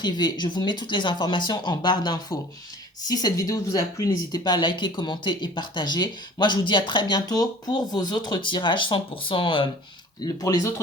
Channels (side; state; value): both; normal; correlation 0.47